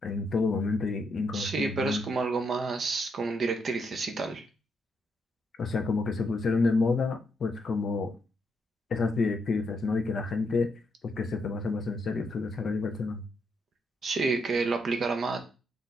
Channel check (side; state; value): both; normal; correlation 0.78